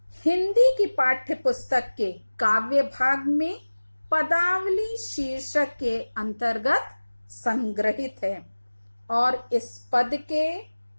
हिंदी की पाठ्य पुस्तक के काव्य भाग में पदावली शीर्षक के अंतर्गत संग्रहित है। और इस पद के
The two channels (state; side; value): inverted; both; correlation -1.00